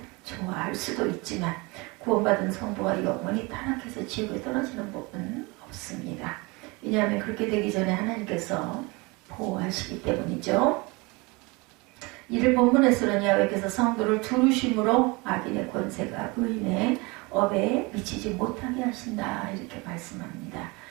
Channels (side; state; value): left; quieter; 26.1 dB